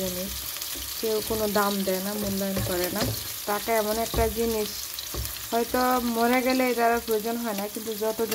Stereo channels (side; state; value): both; identical; correlation 1.00